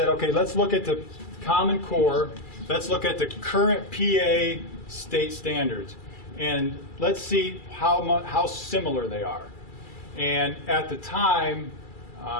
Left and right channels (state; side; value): late; right; 2.3 ms